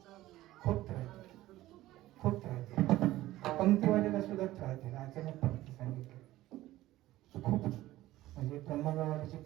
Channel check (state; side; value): quieter; left; 16.0 dB